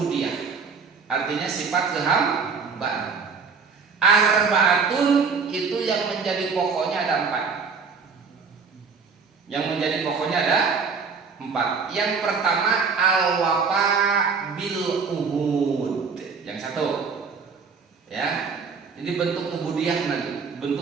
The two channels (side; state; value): left; quieter; 5.3 dB